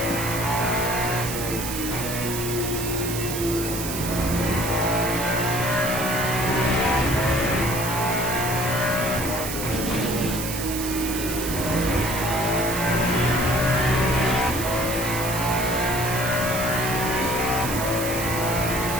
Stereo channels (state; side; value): noise; right; hiss, 6 dB below the sound